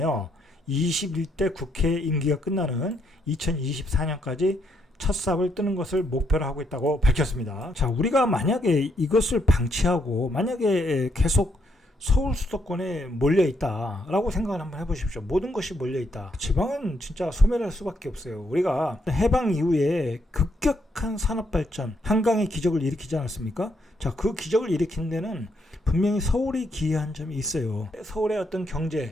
21대 국회 임기가 끝나는 2024년까지 첫 삽을 뜨는 것을 목표로 하고 있다고 밝혔습니다. 자, 우리가 만약에 이것을 방치하고 만약에 계속 서울 수도권에 몰려있다라고 생각을 한번 해보십시오. 모든 것이 몰려있다. 지방은 진짜 소멸할 수밖에 없어요. 우리가 해방 이후에 급격한 산업발전, 한강의 기적을 일으키지 않았습니까? 자, 그 기적을 일으킨 데는 분명히 서울이 기여한 점이 있어요. 서울의 어떤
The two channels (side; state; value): both; normal; correlation 0.75